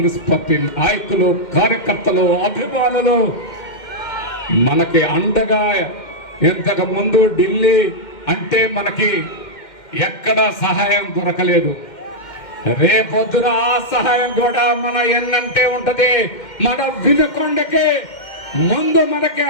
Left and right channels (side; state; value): right; late; 2.1 ms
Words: పార్టీ నాయకులు, కార్యకర్తలు, అభిమానులు మనకి అండగా. ఇంతకు ముందు ఢిల్లీ అంటే మనకి ఎక్కడా సహాయం దొరకలేదు. రేపొద్దున ఆ సహాయం కూడా మన ఎన్నంటే ఉంటది. మన వినుకొండకి ముందు మనకి